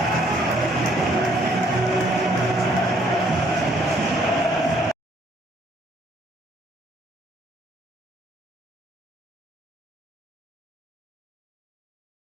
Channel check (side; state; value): both; normal; correlation 0.65